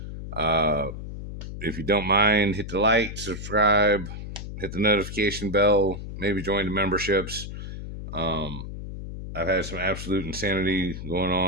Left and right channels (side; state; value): left; noise; hum, 9 dB below the sound